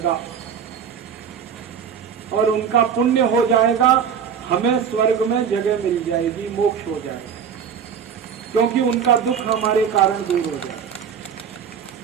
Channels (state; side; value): quieter; left; 7.4 dB